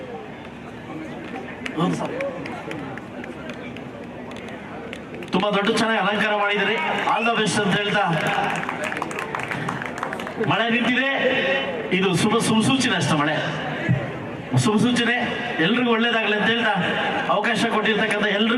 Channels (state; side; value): identical; both; correlation 1.00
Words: ತುಂಬಾ ದೊಡ್ಡ ಚೆನ್ನಾಗಿ ಅಲಂಕಾರ ಮಾಡಿದಿರಿ, ಆಲ್ ದ ಬೆಸ್ಟ್ ಅಂತ ಹೇಳ್ತಾ, ಮಳೆ ನಿಂತಿದೆ, ಇದು ಸುಸೂಚನೆ ಅಷ್ಟೇ, ಮಳೆ ಸುಸೂಚನೆ, ಎಲ್ರಿಗೂ ಒಳ್ಳೇದಾಗಲಿ ಅಂತ ಹೇಳ್ತಾ, ಅವಕಾಶ ಕೊಟ್ಟಿರ್ತಕ್ಕಂಥ